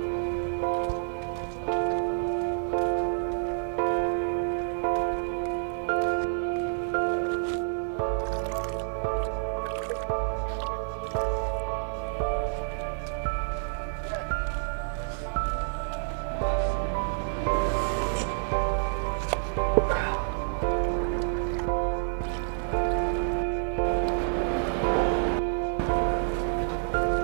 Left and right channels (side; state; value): left; silent; digital silence